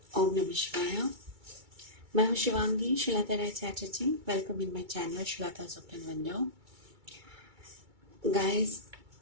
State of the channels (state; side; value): late; left; 2.3 ms